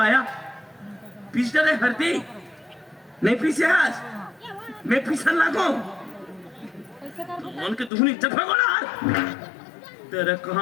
पीस डरे हल्दी नहीं पीसे हस मैं पीसन लागो उनके दुहनी चफगोला तेरे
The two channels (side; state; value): right; drops out; at 7.9 s